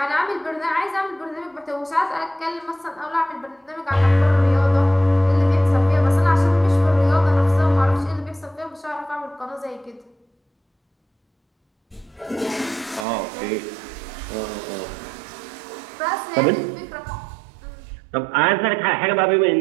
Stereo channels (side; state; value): left; drops out; at 13.1 s